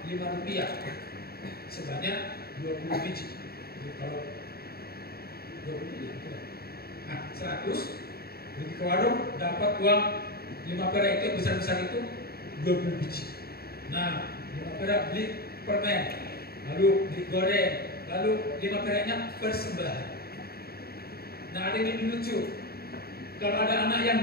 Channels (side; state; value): right; late; 0.45 ms